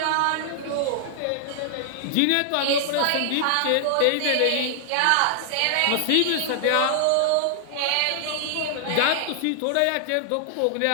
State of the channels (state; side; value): different; both; correlation -0.01